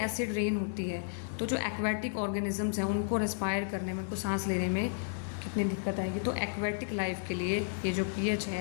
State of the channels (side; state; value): right; silent; 56 dB below the other